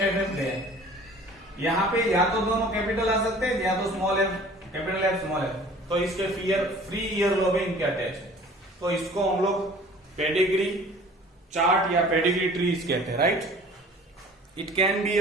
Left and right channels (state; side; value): normal; both; correlation 0.48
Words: एफ गया, यहाँ पे या तो दोनों कैपिटल आ सकते हैं या तो small F capital F small F, तो इसके फ्री ईयरलोब है, इनके अटैच है। तो इसको हम लोग पेडिग्री चार्ट या पेडिग्री ट्रीज कहते हैं, राइट। इट कैन बी